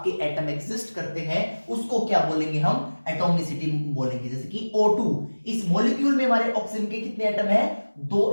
एटम एग्जिस्ट करते हैं उसको क्या बोलेंगे हम, एटॉमिसिटी बोलेंगे। जैसे कि O2, इस मॉलिक्यूल में हमारे ऑक्सीजन के कितने एटम है,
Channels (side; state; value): both; inverted; correlation -1.00